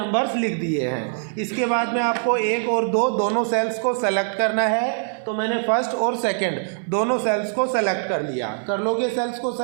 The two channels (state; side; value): silent; left; 64 dB below the other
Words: लिख दिए हैं। इसके बाद में आपको 1 और 2 दोनों सेल्स को सेलेक्ट करना है। तो मैंने फर्स्ट और सेकंड दोनों सेल्स को सेलेक्ट कर लिया। कर लोगे सेल्स को